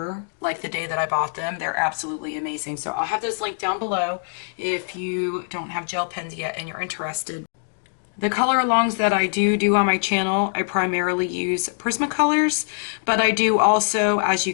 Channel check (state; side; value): silent; right; digital silence